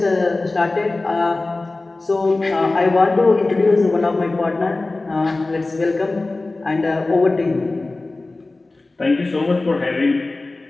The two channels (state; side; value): quieter; right; 3.2 dB